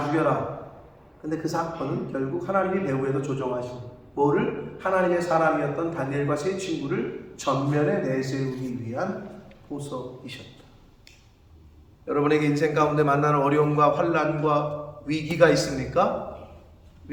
죽여라. 근데 그 사건은 결국 하나님이 배후에서 조정하신, 뭐를? 하나님의 사람이었던 다니엘과 세 친구를 전면에 내세우기 위한 보석이셨다. 여러분에게 인생 가운데 만나는 어려움과 환난과 위기가 있습니까?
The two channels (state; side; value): identical; both; correlation 1.00